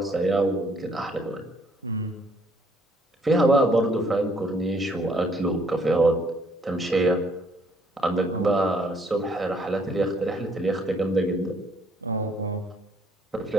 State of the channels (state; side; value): normal; both; correlation 0.65